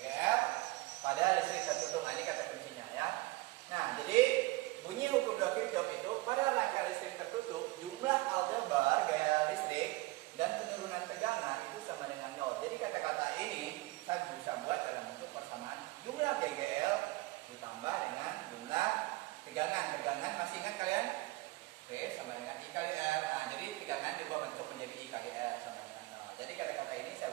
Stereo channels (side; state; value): left; quieter; 20.7 dB